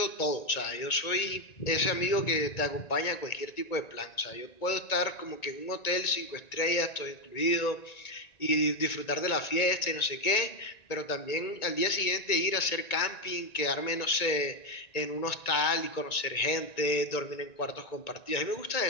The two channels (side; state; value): right; late; 1.9 ms